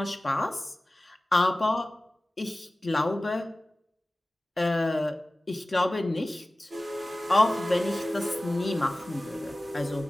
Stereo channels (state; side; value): normal; both; correlation 0.97